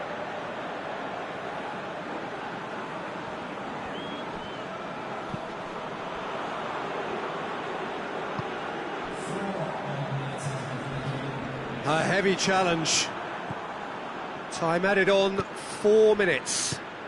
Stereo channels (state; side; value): identical; both; correlation 1.00